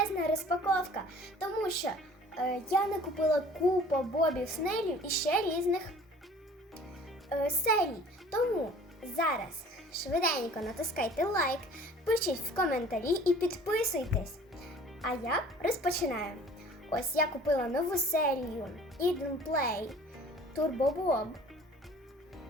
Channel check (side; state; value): both; normal; correlation 0.49